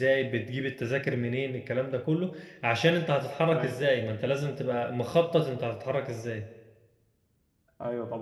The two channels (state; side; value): identical; both; correlation 1.00